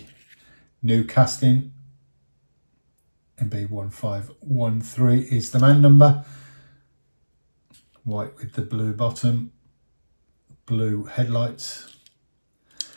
new casting. MB1513 is the man number. White with the blue bottom, blue headlights,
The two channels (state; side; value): inverted; both; correlation -1.00